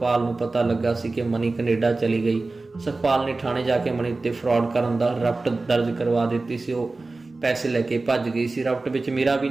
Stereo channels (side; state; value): left; quieter; 3.4 dB